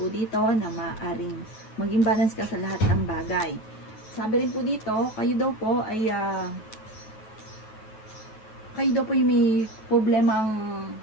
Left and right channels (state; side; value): late; right; 9.3 ms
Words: dito na maaaring maging balance ka sa lahat ng bagay. Sabi rin po dito, kayo daw po yung may problemang